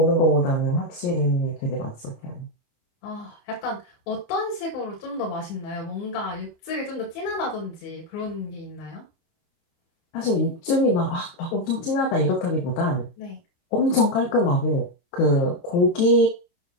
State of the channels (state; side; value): late; right; 22 ms